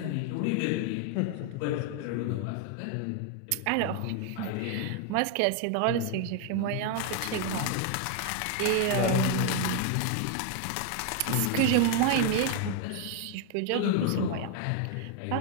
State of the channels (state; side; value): different; both; correlation 0.01